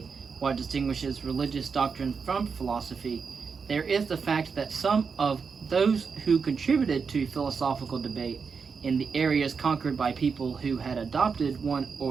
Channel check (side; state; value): left; quieter; 5.5 dB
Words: what distinguishes religious doctrine from philosophy, there is the fact that some of those who contributed to philosophical debate in the areas conquered by people who had adopted one